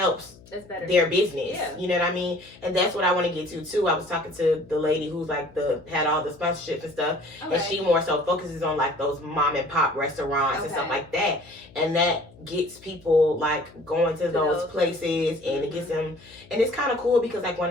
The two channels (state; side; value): noise; left; hum, 24 dB below the sound